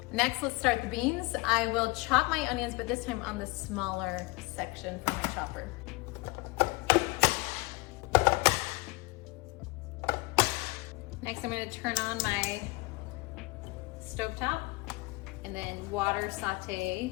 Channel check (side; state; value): right; quieter; 24.5 dB